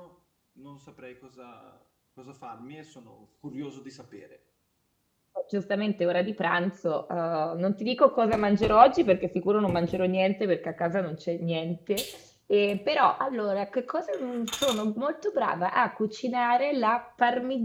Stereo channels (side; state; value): both; identical; correlation 1.00